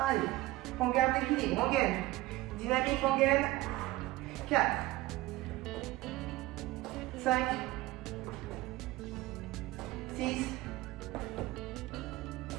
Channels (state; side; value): quieter; left; 18.3 dB